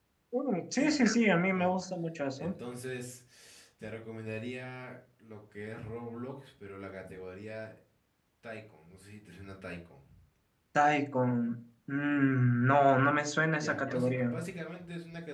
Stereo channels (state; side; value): identical; both; correlation 1.00